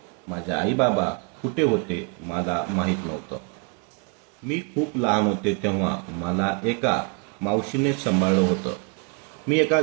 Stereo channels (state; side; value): quieter; left; 34.9 dB